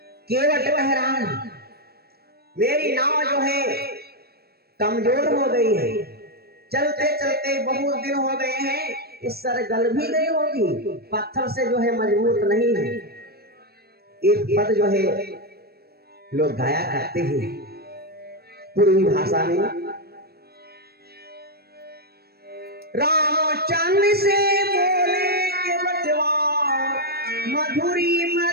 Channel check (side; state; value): left; late; 0.46 ms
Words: केवट कह रहा है मेरी नाव जो है कमजोर हो गई है, चलते चलते बहुत दिन हो गए हैं, इस सर गल भी गई होगी, पत्थर से जो है मजबूत नहीं है। एक पद जो है लोग गाया करते हैं पूर्वी भाषा में, रामचंद्र से बोले के बचवा मधुरी